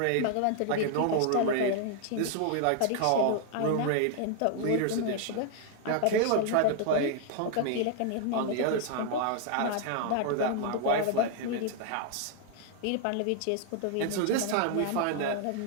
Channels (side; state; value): both; different; correlation 0.00